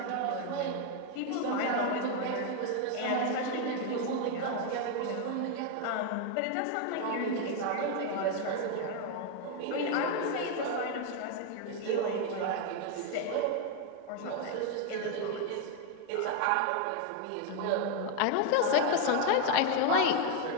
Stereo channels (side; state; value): both; different; correlation 0.01